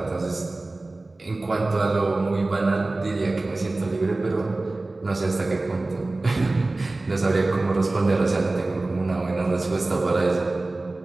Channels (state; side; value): quieter; left; 3.1 dB